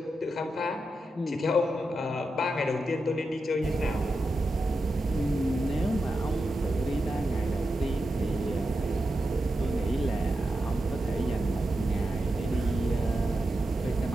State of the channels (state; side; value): normal; both; correlation 0.89